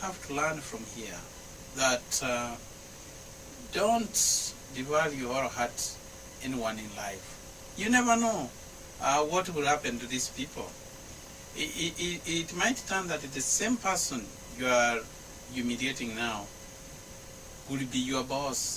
have to learn from here, that don't devalue or hurt anyone in life. You never know what will happen to these people. It might turn that the same person you are humiliating now will be your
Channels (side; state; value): both; identical; correlation 1.00